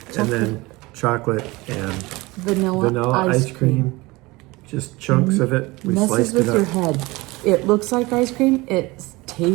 And then chocolate and Vanilla ice cream. Just chunks of it. We Messes sliced with it your up. head. It looks like ice cream. It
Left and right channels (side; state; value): left; quieter; 22.2 dB